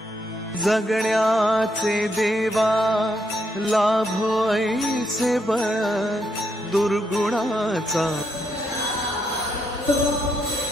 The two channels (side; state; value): both; normal; correlation 0.78